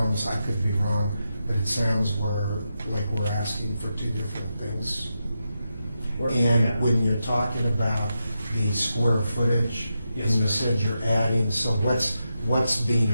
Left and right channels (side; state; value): both; inverted; correlation -0.88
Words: I could be wrong, but it sounds like we're asking for two different things. We're- And yeah. when you're talking about the square footage, Yes, and you sir. said you're adding, so what's being